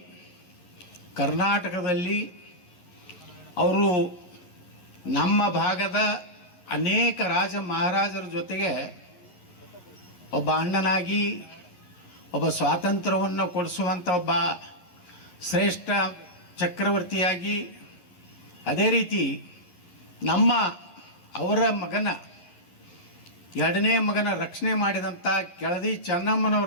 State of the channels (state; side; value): late; right; 11 ms